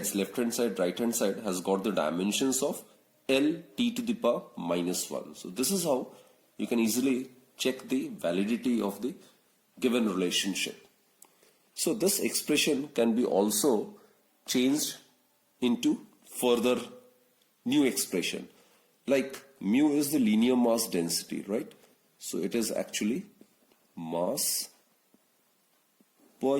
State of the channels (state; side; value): identical; both; correlation 1.00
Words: left hand side, right hand side, has got the dimensions of L t to the power minus 1. So this is how you can easily check the validity of the given relationship. So this expression can be also changed into further new expression. Like mu is the linear mass density, right? So it is actually mass per